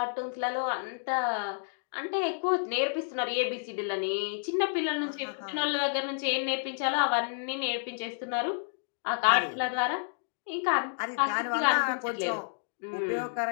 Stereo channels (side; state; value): right; silent; digital silence